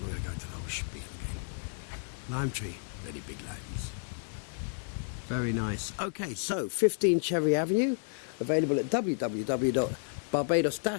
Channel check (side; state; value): right; silent; 57 dB below the other